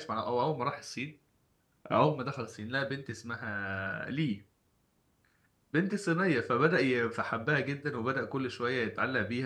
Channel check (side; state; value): both; identical; correlation 1.00